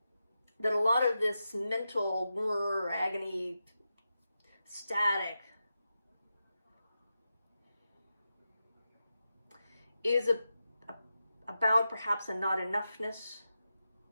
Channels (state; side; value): inverted; both; correlation -0.90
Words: that a lot of this mental agony, static, is about perhaps a not enoughness.